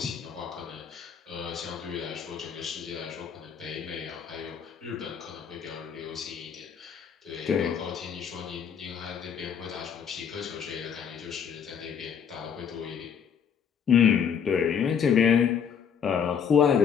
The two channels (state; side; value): quieter; right; 7.5 dB